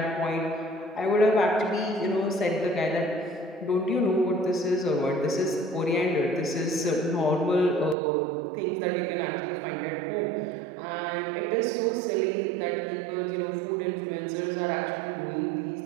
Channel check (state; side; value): drops out; left; at 8.0 s